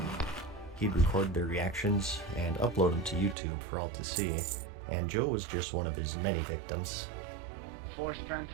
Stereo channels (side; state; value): left; drops out; at 3.4 s